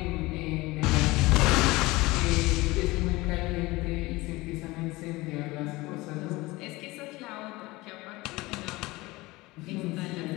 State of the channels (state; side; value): quieter; right; 21.1 dB